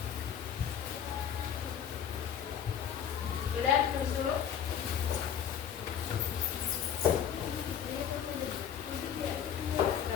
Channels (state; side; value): quieter; right; 8.6 dB